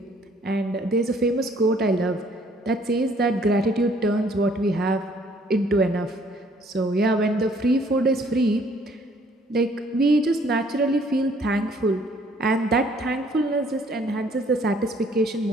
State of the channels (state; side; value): normal; both; correlation 0.61